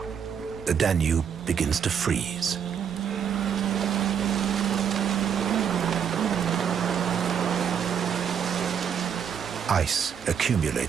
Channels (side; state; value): left; quieter; 7.8 dB